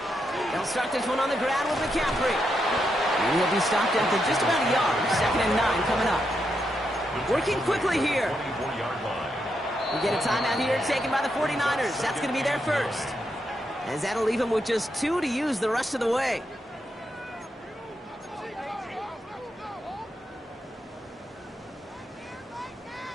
They'll start this one on the ground with McCaffrey. And he'll be stopped after just about a yard. Second and 9 coming up. Working quickly here. We get a timeout here taken by the 49ers. That's going to be their first. As that'll leave them with just 2 to use the rest of the way.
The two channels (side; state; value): both; normal; correlation 0.82